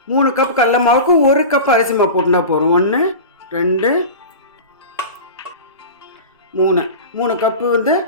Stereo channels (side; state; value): both; inverted; correlation -0.30